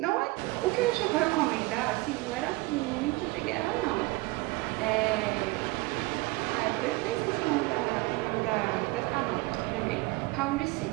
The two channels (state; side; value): quieter; left; 22.1 dB